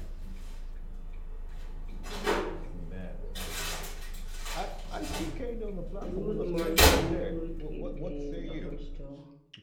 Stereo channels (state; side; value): identical; both; correlation 1.00